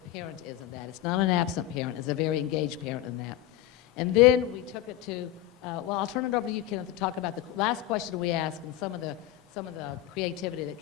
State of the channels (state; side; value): quieter; right; 13.4 dB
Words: is in that. It's not an absent parent, it's a very engaged parent in that. And then we took it to, well, I'll turn it over to you, Kenneth, to talk about the last question we asked and some of the creativity that